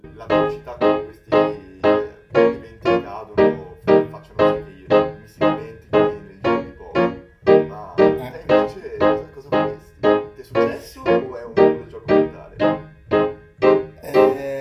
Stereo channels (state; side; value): identical; both; correlation 1.00